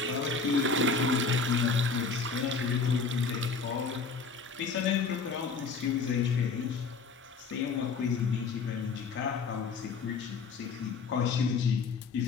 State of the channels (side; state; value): right; quieter; 4.8 dB